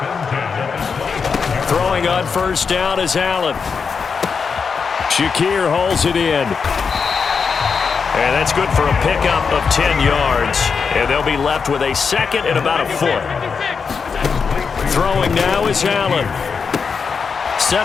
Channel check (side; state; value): right; quieter; 5.6 dB